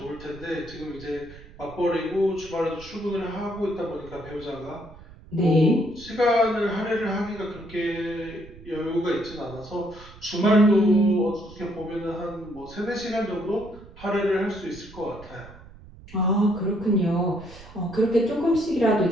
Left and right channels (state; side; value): noise; right; rumble, 19 dB below the sound